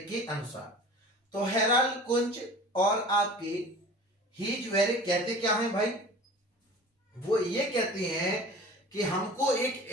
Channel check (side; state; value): both; normal; correlation 0.41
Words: के अनुसार। तो हेराल्ड कुंच और आपके हीजवेरिक कहते क्या है भाई, वो ये कहते हैं कि हमको एक